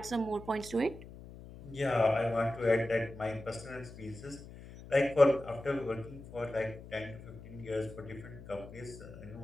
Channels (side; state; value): left; noise; hum, 15 dB below the sound